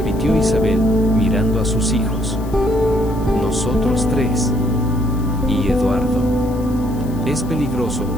Isabel, mirando a sus hijos. Nosotros 3. Y Eduardo. Es peligroso,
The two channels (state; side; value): noise; left; hiss, 23 dB below the sound